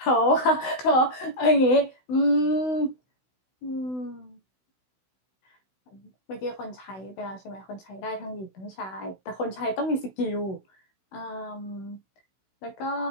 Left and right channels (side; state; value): right; late; 16 ms